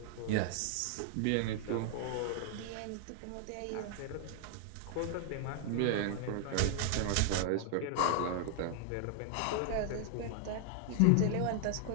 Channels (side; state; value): both; different; correlation 0.00